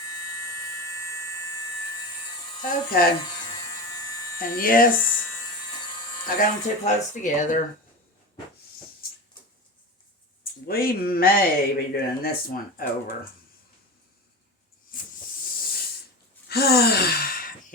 Okay. And yes, I got them too close together. We may be doing this one over.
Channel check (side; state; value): both; normal; correlation 0.27